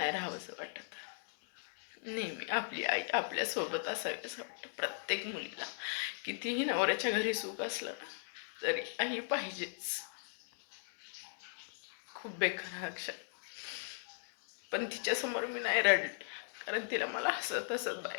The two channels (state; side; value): silent; right; digital silence